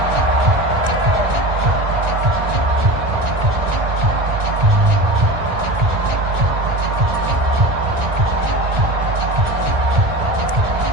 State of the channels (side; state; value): left; late; 1.9 ms